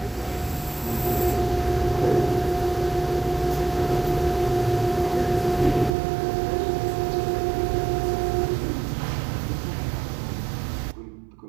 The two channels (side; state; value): left; drops out; at 5.9 s